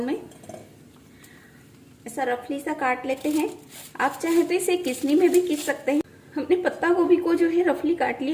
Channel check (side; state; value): both; identical; correlation 1.00